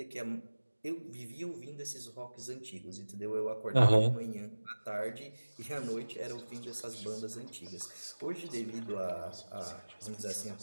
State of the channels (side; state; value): both; inverted; correlation -1.00